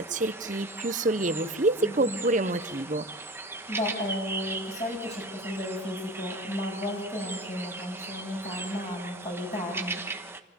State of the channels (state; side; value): normal; both; correlation 0.34